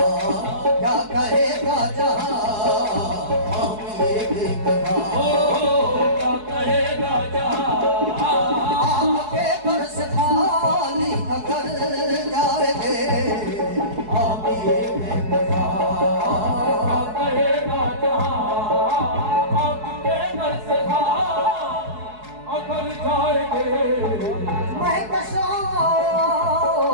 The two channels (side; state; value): left; late; 4.7 ms